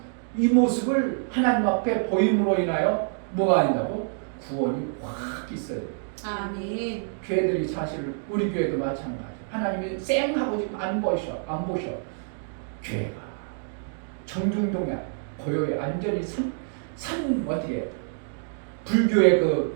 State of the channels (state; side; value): silent; left; digital silence